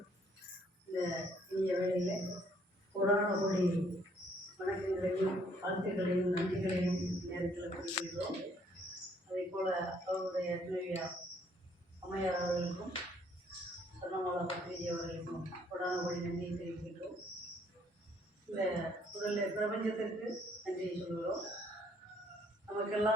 இந்த இனிய வேளையில் கொரோனா கோடி வணக்கங்களையும் வாழ்த்துக்களையும் நன்றிகளையும் நேரத்தில் குறிப்பிடுகிறோம். அதே போல் அவருடைய துணைவியா அம்மையார் அவர்களுக்கும் சொன்னமாலா பத்திரிகை அவர்களுக்கும் கொரோனா கோடி நன்றியை தெரிவிக்கின்றோம். இந்த முதல்ல பிரபஞ்சத்திற்கு நன்றியை சொல்கிறோம்.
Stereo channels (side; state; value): both; normal; correlation 0.65